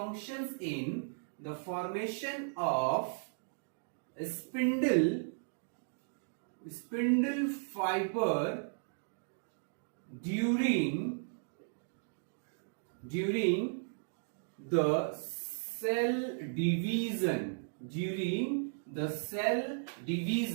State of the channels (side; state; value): left; silent; digital silence